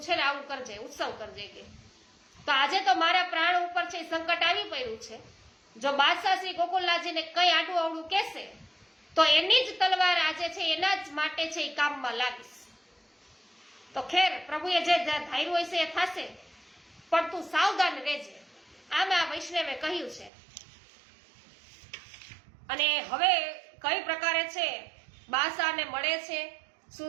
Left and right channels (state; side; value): drops out; left; at 20.3 s